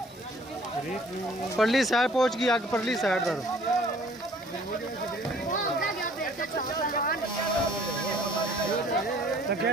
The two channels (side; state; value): both; normal; correlation 0.55